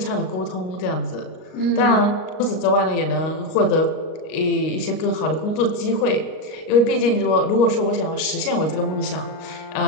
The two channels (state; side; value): late; right; 38 ms